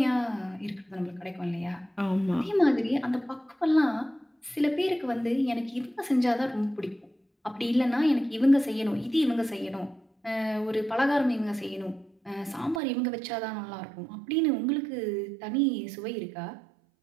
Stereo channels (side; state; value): left; drops out; at 12.8 s